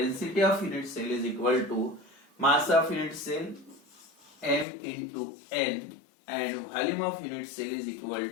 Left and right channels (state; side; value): drops out; right; at 4.7 s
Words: of unit cell is equal to mass of unit cell m into n and volume of unit cell is equal